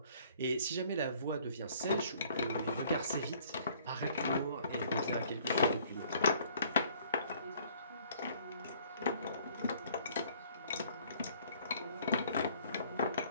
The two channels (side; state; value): both; inverted; correlation -0.58